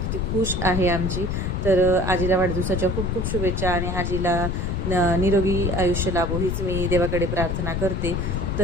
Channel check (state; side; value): noise; left; rumble, 1 dB below the sound